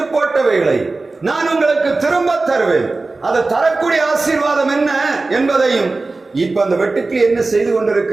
போட்டவைகளை நான் உங்களுக்கு திரும்ப தருவேன். அதை தரக்கூடிய ஆசீர்வாதம் என்ன என்பதையும் இப்ப அந்த வெட்டுக்கிளி என்ன செய்து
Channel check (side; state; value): left; quieter; 3.5 dB